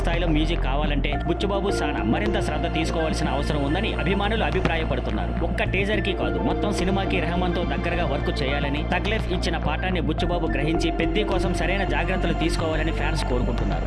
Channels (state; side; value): identical; both; correlation 1.00